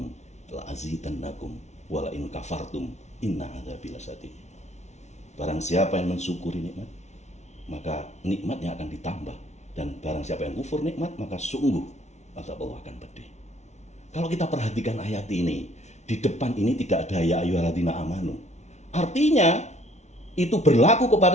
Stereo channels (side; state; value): right; late; 0.32 ms